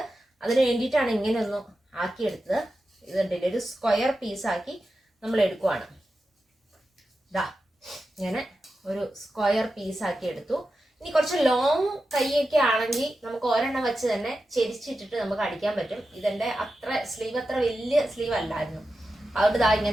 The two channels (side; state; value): both; normal; correlation 0.91